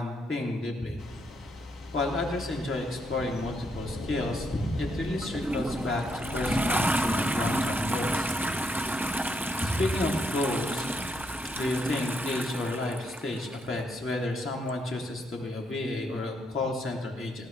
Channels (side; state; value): both; normal; correlation 0.76